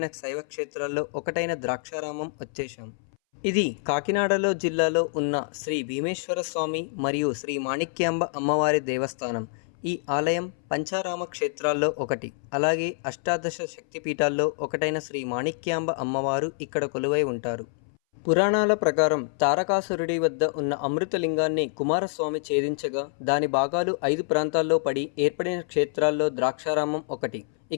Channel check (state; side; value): silent; right; 60 dB below the other